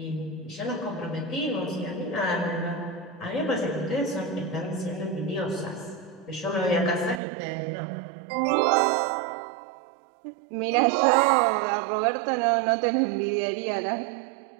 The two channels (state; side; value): drops out; left; at 7.2 s